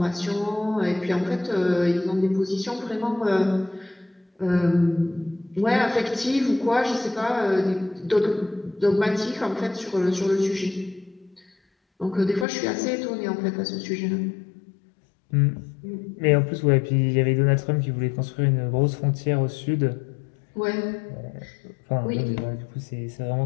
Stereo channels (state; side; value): drops out; right; at 12.5 s